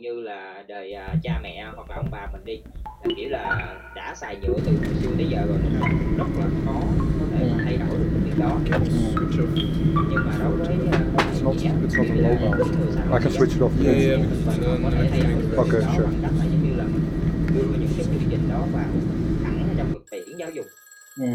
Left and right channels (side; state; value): both; identical; correlation 1.00